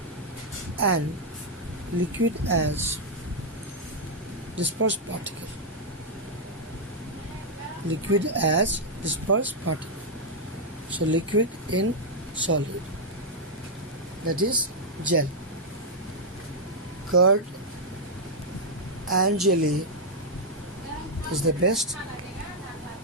and liquid as dispersed particle. Liquid as dispersed particle. So liquid in solid, that is gel. Curd and jelly is the best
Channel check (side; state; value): both; normal; correlation -0.04